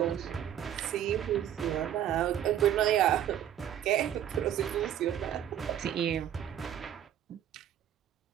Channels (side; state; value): left; quieter; 10.5 dB